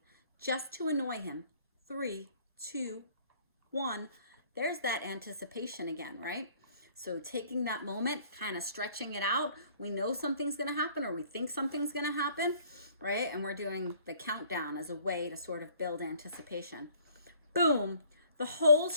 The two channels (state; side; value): inverted; both; correlation -0.58